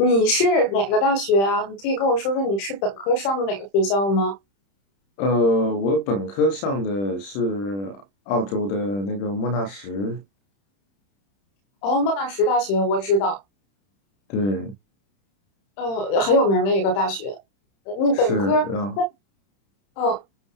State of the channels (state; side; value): late; right; 31 ms